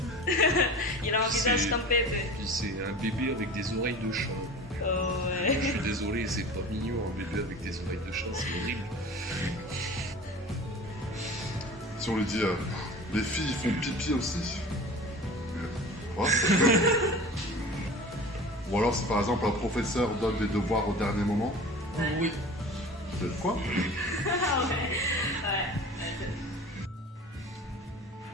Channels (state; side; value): normal; both; correlation 0.38